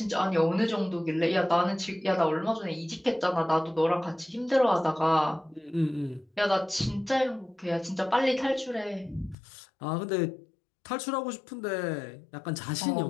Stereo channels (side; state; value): right; drops out; at 9.3 s